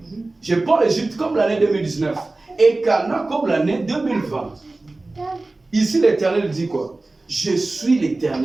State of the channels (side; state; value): left; quieter; 3.1 dB